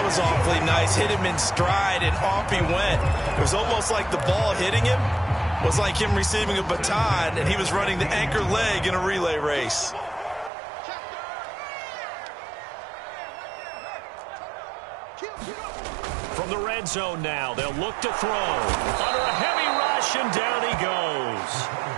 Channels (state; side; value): drops out; left; at 10.5 s